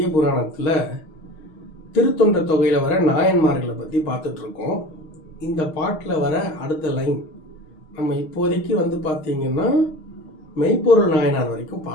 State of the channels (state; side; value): late; right; 6.3 ms